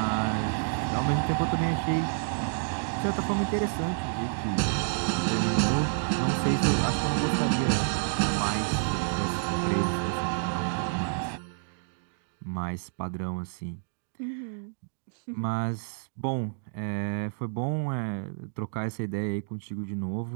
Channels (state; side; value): silent; left; digital silence